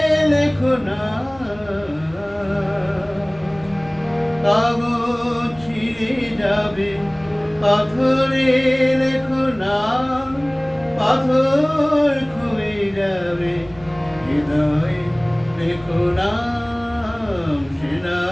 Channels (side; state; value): right; noise; rumble, 22 dB below the sound